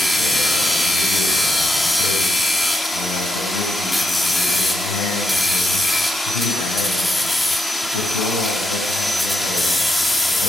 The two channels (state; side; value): normal; both; correlation 0.83